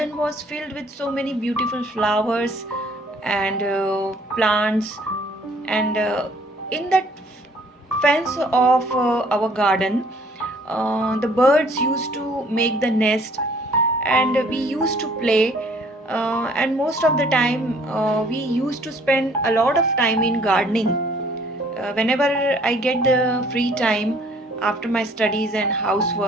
was filled with so many beautiful flowers and plants. And in that fence of our garden, the birds used to make the nest and we used to play, and most of the time we used to spend a lot of time in gardening. Whenever I get the free time after my studies and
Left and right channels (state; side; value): normal; both; correlation 0.59